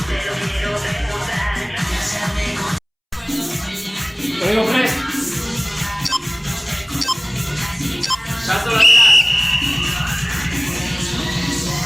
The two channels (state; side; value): identical; both; correlation 1.00